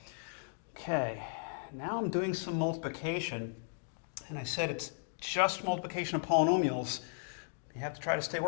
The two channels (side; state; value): right; silent; digital silence